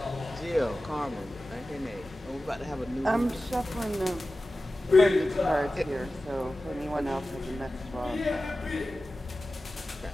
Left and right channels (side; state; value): both; normal; correlation 0.95